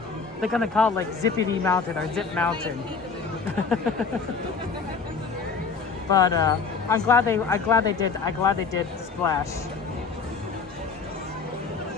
They're going to call it like Zippity Mountain or Zip Mountain. But I'm glad they did Splash.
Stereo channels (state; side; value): quieter; right; 5.1 dB